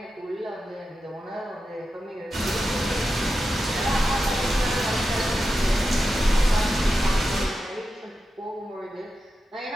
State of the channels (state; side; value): normal; both; correlation 0.90